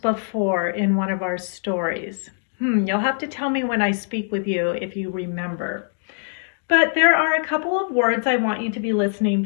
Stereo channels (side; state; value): right; silent; digital silence